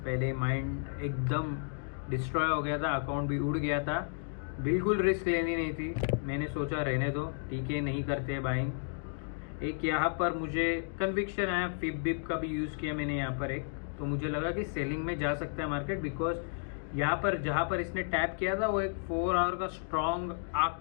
माइंड एकदम डिस्ट्रॉय हो गया था, अकाउंट भी उड़ गया था, बिल्कुल रिस्क लेनी नहीं थी। मैंने सोचा रहने दो, ठीक है, नहीं करते बाइंग। एक यहाँ पर मुझे कन्विक्शन आया, फिप बिप का भी यूज़ किया मैंने यहाँ पर एक, तो मुझे लगा कि सेलिंग में जा सकता है मार्केट, बिकॉज यहाँ पर जहाँ पर इसने टैप किया था वो एक 4 आवर का स्ट्रॉन्ग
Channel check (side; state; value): right; silent; digital silence